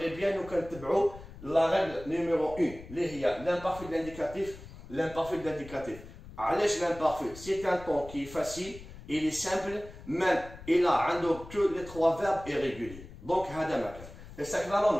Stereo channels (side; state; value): left; noise; rumble, 16 dB below the sound